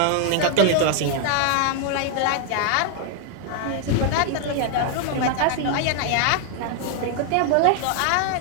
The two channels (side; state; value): both; different; correlation 0.00